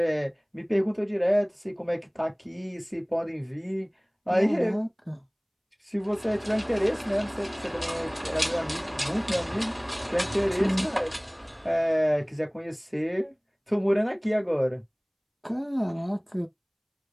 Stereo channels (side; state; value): both; identical; correlation 1.00